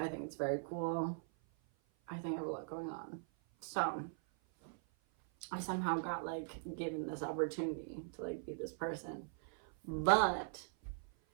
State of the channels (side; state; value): left; silent; 51 dB below the other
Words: think it's very cool. I think I have a lot going on. So, I somehow got like given this opportunity to like be this person. But